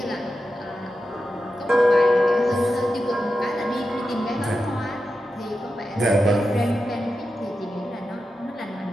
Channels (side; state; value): both; normal; correlation 0.90